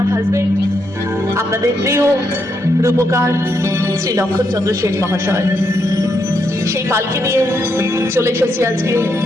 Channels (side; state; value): both; normal; correlation 0.79